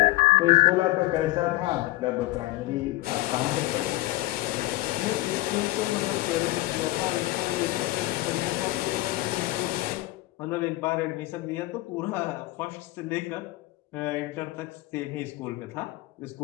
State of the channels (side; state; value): right; quieter; 19.2 dB